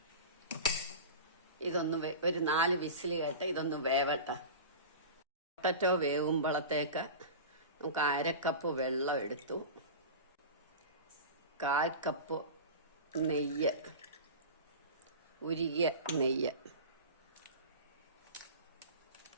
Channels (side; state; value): both; inverted; correlation -0.30